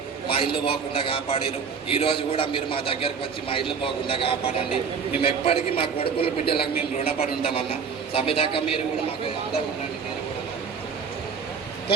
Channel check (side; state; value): left; quieter; 6.1 dB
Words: మా ఇల్లు పోకుండా కాపాడారు. ఈ రోజు కూడా మీరు మా దగ్గరకు వచ్చి మా ఇల్లు పోకుండా కాపాడండి. మేము ఎప్పటికీ మా కొడుకుల బిడ్డలకు మేము రుణపడి ఉంటామన్నా. సభ్యదాకా మీరు కూడా మాకు అంతా ఉండండి.